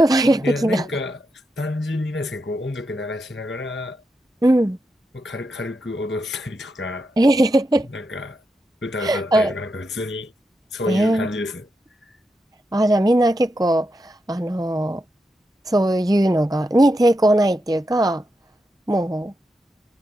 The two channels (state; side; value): normal; both; correlation 0.85